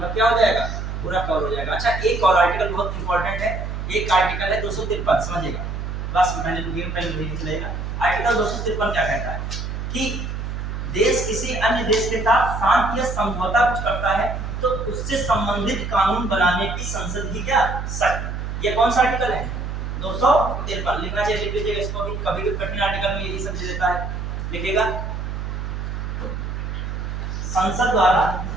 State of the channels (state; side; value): noise; right; hum, 5 dB below the sound